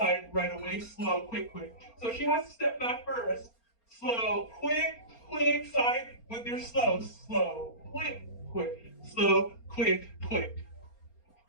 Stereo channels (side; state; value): right; late; 4.3 ms